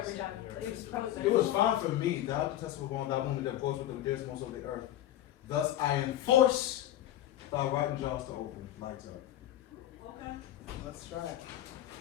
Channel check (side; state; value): right; quieter; 12.9 dB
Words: time. It was probably better. It was fine for me. Thou detestable one, thou womb that goes with the dearest most of the earth. Thus I enforce thy writing jaws to open. Lights up. Okay. Let's try.